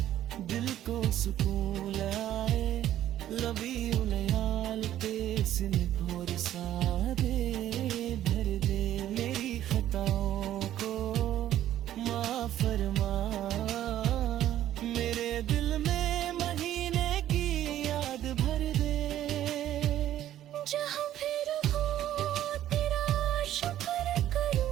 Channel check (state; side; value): quieter; left; 12.4 dB